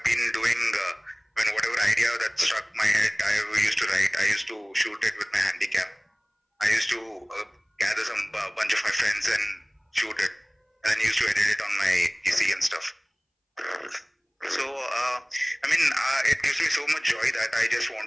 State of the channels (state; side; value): identical; both; correlation 1.00